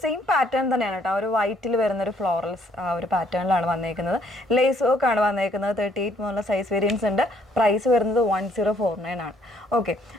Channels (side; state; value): both; normal; correlation 0.66